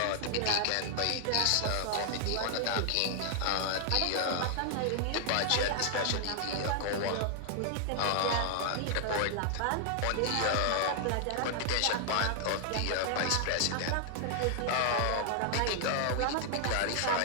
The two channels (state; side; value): different; both; correlation 0.00